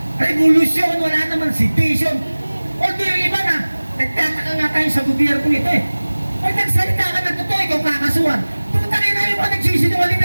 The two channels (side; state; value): both; inverted; correlation -1.00